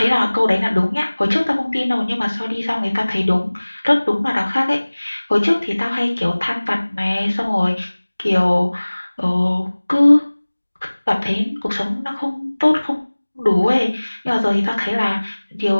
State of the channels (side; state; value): both; inverted; correlation -1.00